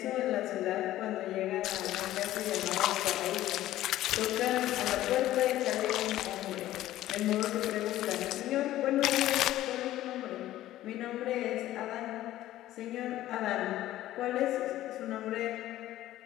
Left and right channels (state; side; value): quieter; right; 14.3 dB